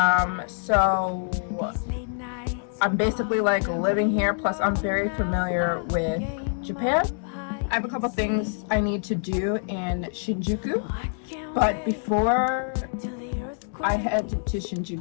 So I'm basically like living here, plus I'm very familiar with Japan. I have a couple things I need to do in Shinjuku, but before I head to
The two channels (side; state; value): right; silent; 60 dB below the other